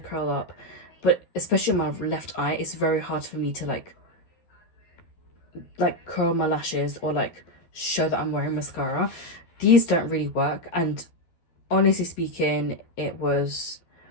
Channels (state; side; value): late; right; 12 ms